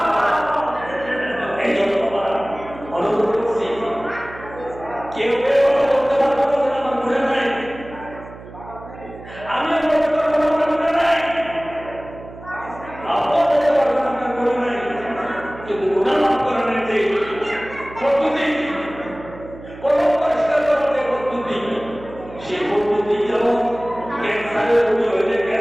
এই জন্য অনুরোধ করছি, কেউ কেউ করতে পারবো না আমার ঘুরে নাই, আমি বলতে পারবো না আমার ঘুরে নাই, আপনি বলতে পারবেন আপনার ঘুরে নাই, কিন্তু গুনাহ মাফ করার যে পদ্ধতি, কোন পরিষ্কার করার যে পদ্ধতি, সেই পদ্ধতি যেমন ক্যান্সারের রোগী হইলে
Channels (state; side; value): noise; right; hum, 16 dB below the sound